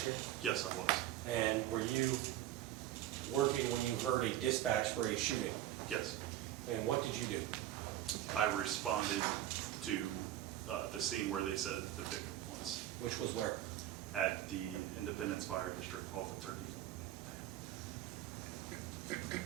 year? Yes, I was. And were you working when you heard a dispatch for a shooting? Yes. And what did you do? I responded to the scene where they said the victim was, Which was where? at the Independence Fire District off of Turkey Foot.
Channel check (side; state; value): left; quieter; 13.0 dB